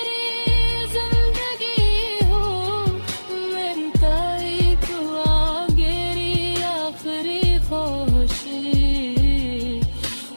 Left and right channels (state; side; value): inverted; both; correlation -1.00